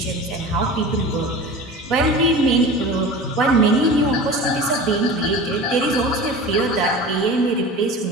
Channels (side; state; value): both; normal; correlation 0.35